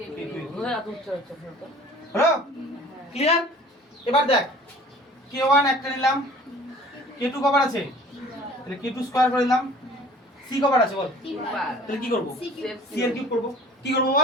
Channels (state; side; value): normal; both; correlation 0.48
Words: এর কিউব। হলো এত উচ্চ হচ্ছে হলো? ক্লিয়ার? এবার দেখ k1 একটা নিলাম, k2 কবার আছে? তাহলে k2 স্কয়ার করে দিলাম, c কবার আছে বল? তাহলে কি করব? c এর কিউব করব। কি করব